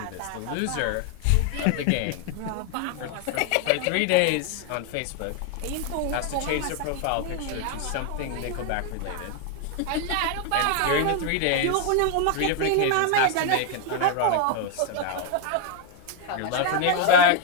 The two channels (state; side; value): different; both; correlation 0.00